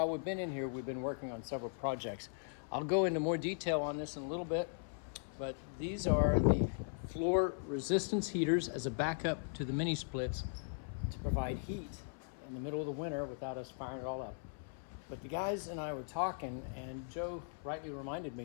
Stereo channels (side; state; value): right; silent; 52 dB below the other